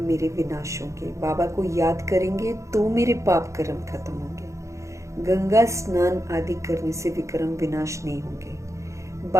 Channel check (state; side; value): late; left; 0.15 ms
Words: मेरे विनाश होंगे। बाबा को याद करेंगे तो मेरे पाप कर्म खत्म होंगे। गंगा स्नान आदि करने से विक्रम विनाश नहीं होंगे।